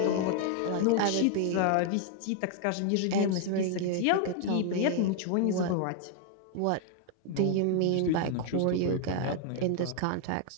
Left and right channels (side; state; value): both; different; correlation 0.00